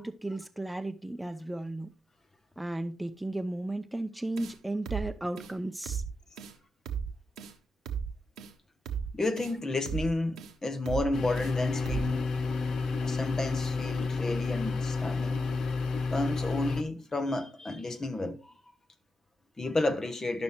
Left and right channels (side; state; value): both; normal; correlation 0.88